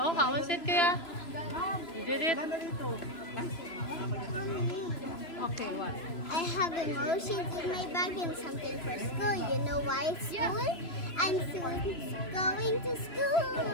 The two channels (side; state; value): right; late; 3.0 ms